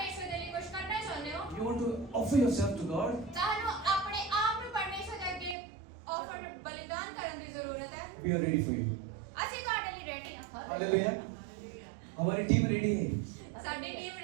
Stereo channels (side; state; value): left; drops out; at 5.6 s